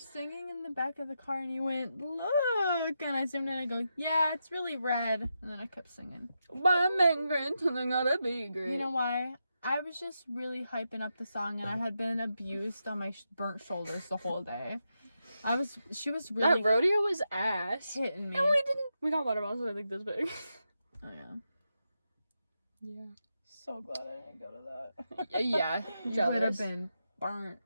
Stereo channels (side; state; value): both; inverted; correlation -0.86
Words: singing in the back of the car and you went, look. And I zoomed in and I go, yeah, it's really red. And then I kept singing. Why I'm great and I gotta be great. You know why? I was just really hyping up the song and I had been abused on my burnt shoulders the whole day. She was really that rodeo was ass. hitting me. And we got water bottles that are like this big. Oh, yeah. Yeah. So glad I didn't go to that. Yeah. You would have Jealous. been burnt.